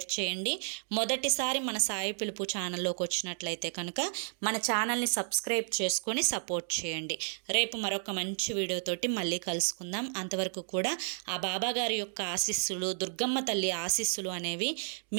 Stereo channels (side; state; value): left; silent; digital silence